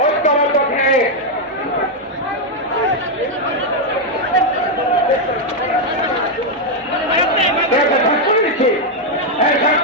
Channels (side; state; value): both; normal; correlation 0.01